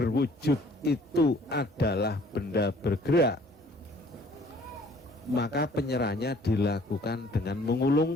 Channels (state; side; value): normal; both; correlation 0.56